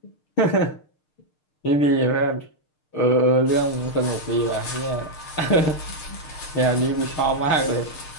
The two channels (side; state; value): right; late; 6.6 ms